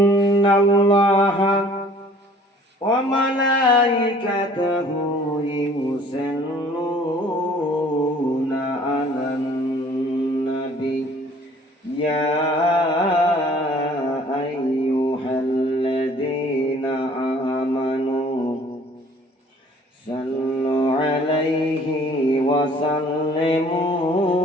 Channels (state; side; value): normal; both; correlation 0.53